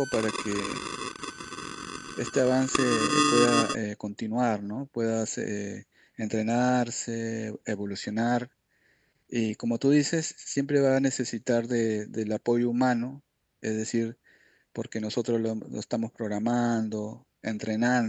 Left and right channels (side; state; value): both; identical; correlation 1.00